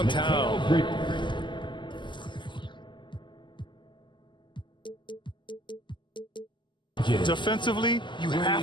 Defensively, you have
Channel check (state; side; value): late; right; 0.23 ms